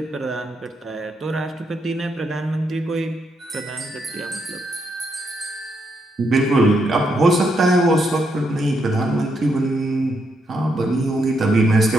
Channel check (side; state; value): both; normal; correlation 0.78